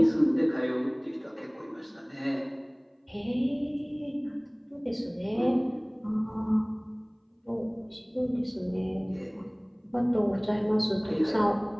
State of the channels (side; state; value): both; identical; correlation 1.00